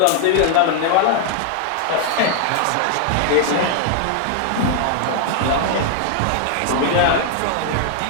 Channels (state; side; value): different; both; correlation 0.00